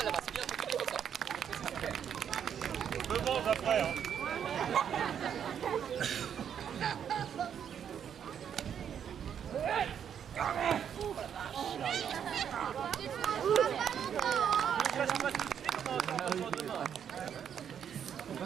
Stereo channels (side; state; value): left; quieter; 8.5 dB